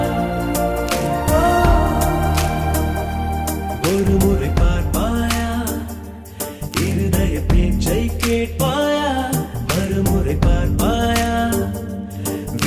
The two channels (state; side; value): identical; both; correlation 1.00